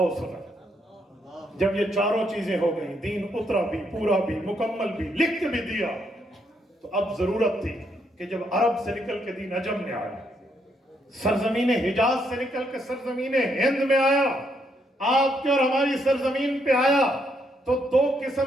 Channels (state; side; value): normal; both; correlation 0.75